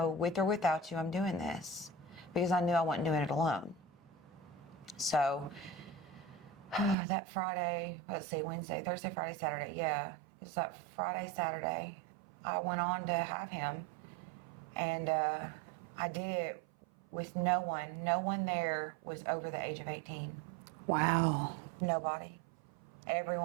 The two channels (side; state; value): left; drops out; at 7.0 s